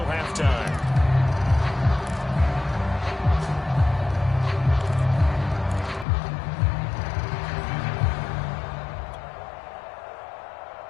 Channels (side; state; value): right; drops out; at 6.1 s